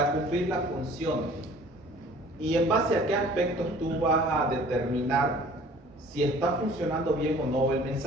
cumplir la función, y en base a qué aspectos tú vas a determinar si está funcionando bien o no el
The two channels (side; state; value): both; normal; correlation 0.50